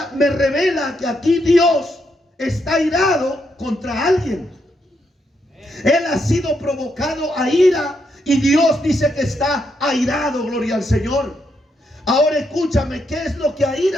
me revela que aquí Dios está airado contra alguien. Él ha sido provocado a ira y Dios dice que está airado, gloria al Señor. Ahora escúchame, ¿qué es lo que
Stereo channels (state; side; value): normal; both; correlation 0.79